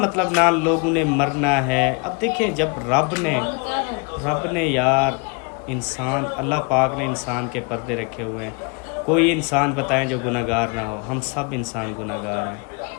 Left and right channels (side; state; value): right; quieter; 32.2 dB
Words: ना लोगों ने मरना है। अब देखें, जब रब ने यार इंसान, अल्लाह पाक ने इंसान के पर्दे रखे हुए हैं। कोई इंसान बताएं जो गुनाहगार ना हो, हम सब इंसान गुनाहगार हैं।